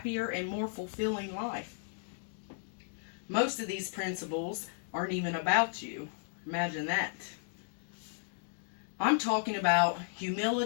and more fulfilling life? Most of these principles aren't even about you. Imagine that. I'm talking about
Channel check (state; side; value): silent; right; digital silence